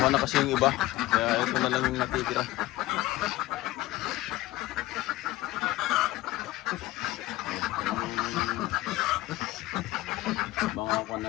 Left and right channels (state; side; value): quieter; right; 17.4 dB